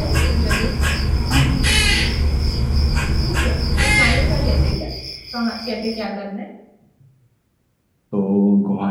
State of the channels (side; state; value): both; identical; correlation 1.00